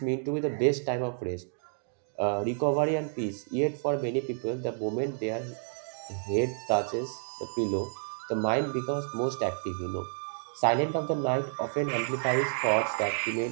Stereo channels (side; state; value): left; silent; digital silence